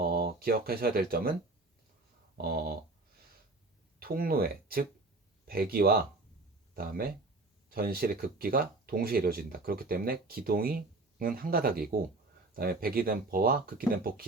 기억하셔야 될 점은 통로에, 즉 배기와 그다음에 전실의 극기가 동시에 이루어진다. 그렇기 때문에 기동은 한 가닥이고, 그다음에 배기 댐퍼와 극기 댐퍼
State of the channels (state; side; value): quieter; left; 3.1 dB